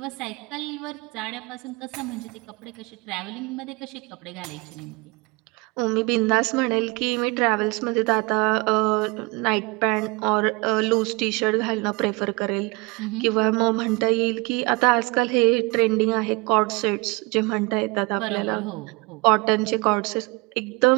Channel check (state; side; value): quieter; left; 26.2 dB